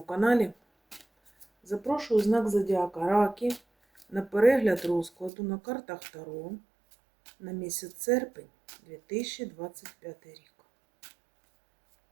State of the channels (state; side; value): drops out; left; at 5.3 s